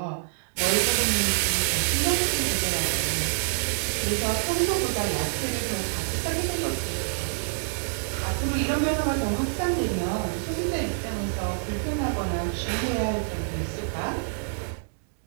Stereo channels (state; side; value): silent; left; 60 dB below the other